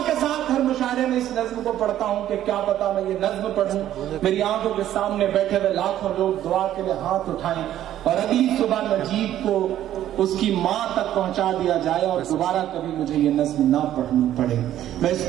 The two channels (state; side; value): quieter; left; 12.1 dB